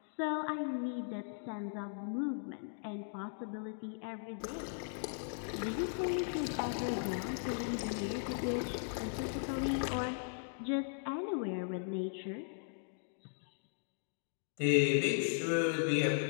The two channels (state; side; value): silent; right; digital silence